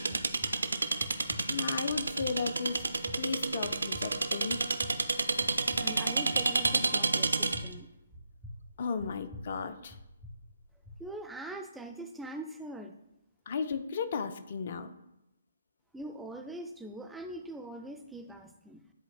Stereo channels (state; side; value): inverted; both; correlation -0.80